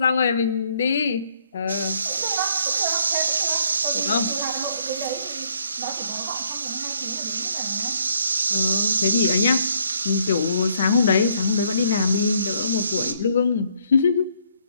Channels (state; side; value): inverted; both; correlation -0.68